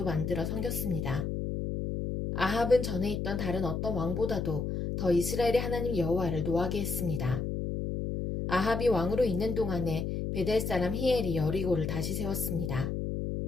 만들어 섬겼습니다. 아합은 전에 있던 다른 어떤 왕보다도 더 이스라엘의 하나님 여호와를 노하게 했습니다. 아합이 왕으로 있는 동안에 베델 사람 히엘이 여리고를 다시 세웠습니다.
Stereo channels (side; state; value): left; noise; hum, 2 dB below the sound